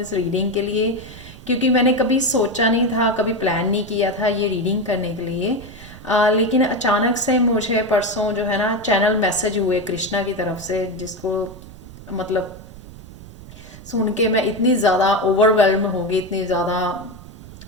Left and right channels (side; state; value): right; noise; rumble, 17 dB below the sound